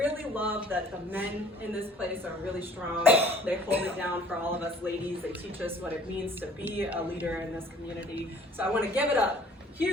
love that the men in this place are really strong. They hold it down for all of us ladies. They teach us what it means to be a leader in this community. So I want to give it a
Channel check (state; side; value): normal; both; correlation 0.53